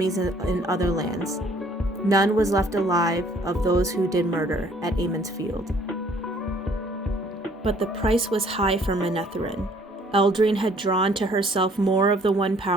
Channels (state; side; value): normal; both; correlation 0.59